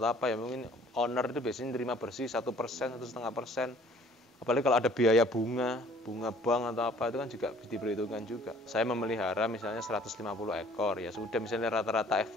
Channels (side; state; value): both; normal; correlation 0.55